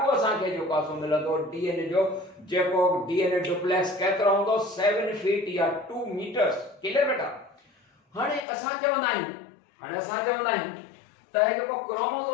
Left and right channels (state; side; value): drops out; right; at 8.5 s